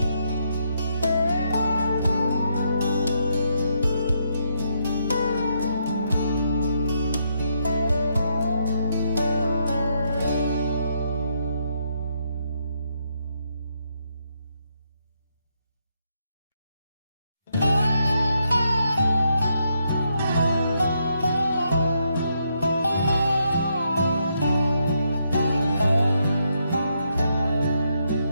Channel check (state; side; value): inverted; both; correlation -0.77